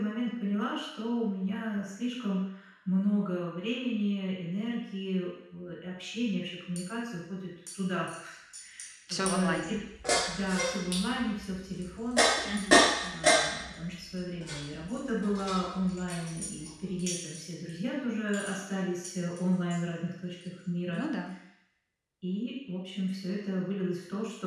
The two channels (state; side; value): identical; both; correlation 1.00